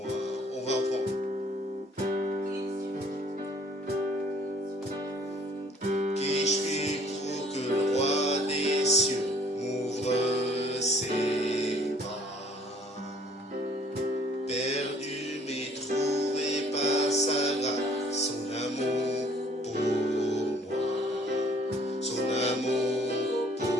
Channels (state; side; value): normal; both; correlation 0.58